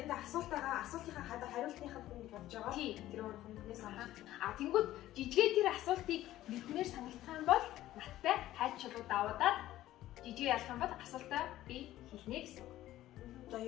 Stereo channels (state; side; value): quieter; right; 14.5 dB